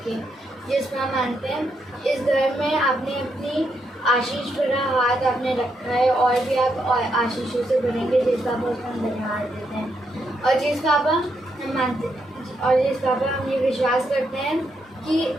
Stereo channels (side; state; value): both; normal; correlation 0.79